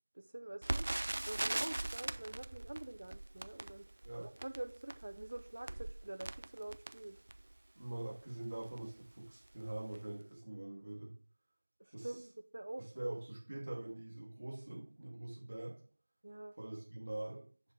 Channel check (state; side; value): inverted; both; correlation -1.00